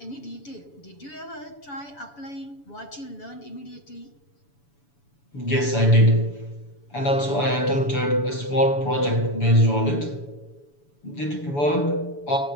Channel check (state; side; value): late; right; 7.0 ms